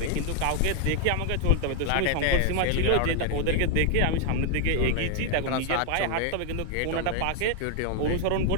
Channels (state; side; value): different; both; correlation 0.00